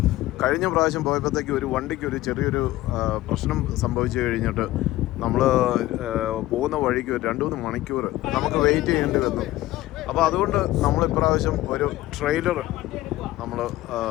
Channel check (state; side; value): quieter; right; 16.5 dB